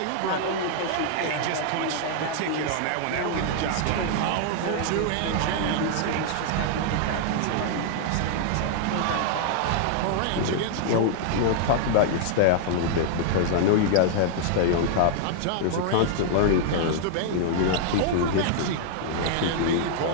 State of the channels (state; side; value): different; both; correlation -0.01